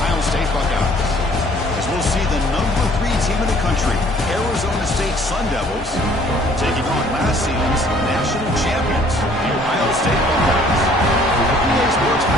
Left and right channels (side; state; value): both; normal; correlation 0.57